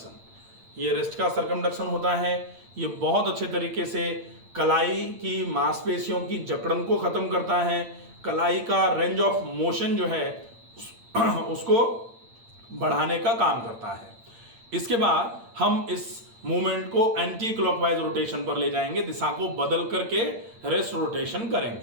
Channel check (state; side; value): late; left; 8.8 ms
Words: ये रिस्ट का सरकमडक्शन होता है। ये बहुत अच्छे तरीके से कलाई की मांसपेशियों की जकड़न को खत्म करता है। कलाई का रेंज ऑफ मोशन जो है उसको बढ़ाने का काम करता है। इसके बाद हम इस मूवमेंट को एंटी क्लॉकवाइज रोटेशन पर ले जाएंगे, दिशा को बदल करके रिस्ट रोटेशन